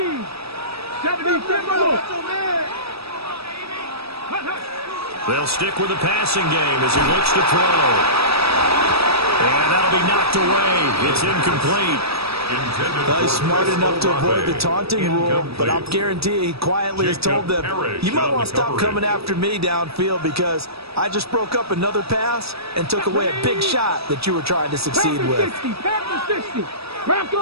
70, They'll stick with the passing game as he looks to throw. And that'll be knocked away. It's incomplete. Well, he's smart enough to avoid the taunting rule, but I'll guarantee he quietly has told them, you might want to stop coming after me downfield because I just broke up another pass and took away a big shot that you were trying to succeed with.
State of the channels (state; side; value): late; left; 0.77 ms